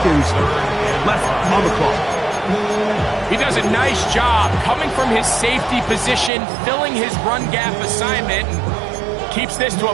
left on the clock. He does a nice job coming from his safety position, filling his run gap assignment, and keeps this to a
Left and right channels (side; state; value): left; drops out; at 6.3 s